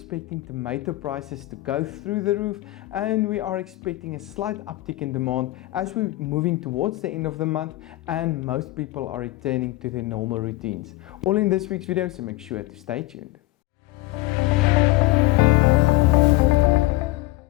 tomato prices to go through the roof, and we are expecting a slight uptick in demand as we're moving towards the end of the month and most people are returning to their normal routines. All in this week's video, so make sure to stay tuned.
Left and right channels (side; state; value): right; quieter; 18.8 dB